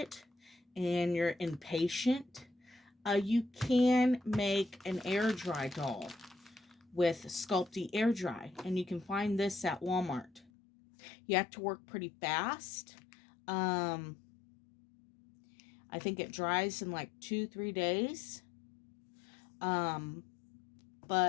and you're impatient, you can make an air dry doll with Sculpey Air Dry, and you can find this at Walmart. You have to work pretty fast. I think it dries in like 2-3 days.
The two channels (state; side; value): drops out; right; at 10.5 s